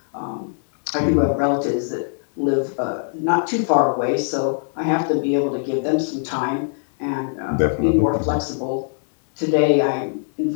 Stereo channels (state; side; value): silent; right; digital silence